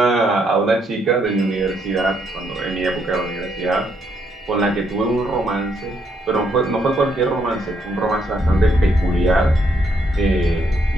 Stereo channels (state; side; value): normal; both; correlation 0.74